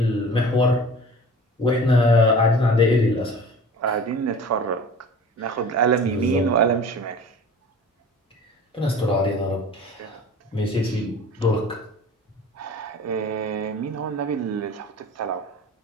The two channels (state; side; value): normal; both; correlation 0.41